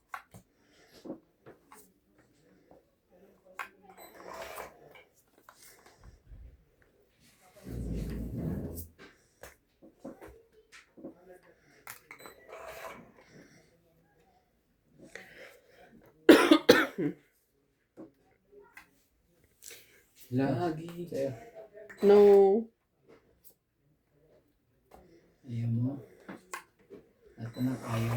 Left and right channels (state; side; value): identical; both; correlation 1.00